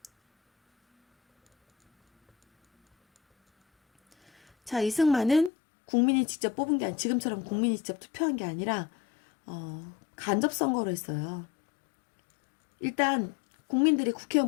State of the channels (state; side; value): drops out; right; at 5.5 s